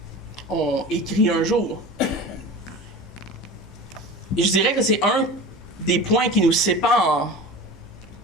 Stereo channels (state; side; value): normal; both; correlation 0.34